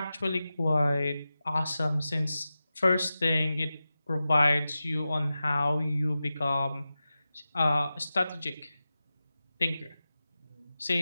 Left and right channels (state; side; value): inverted; both; correlation -0.93